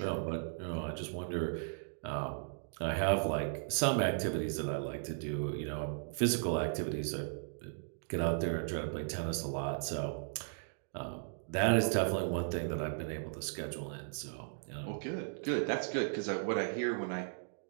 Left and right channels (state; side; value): silent; left; digital silence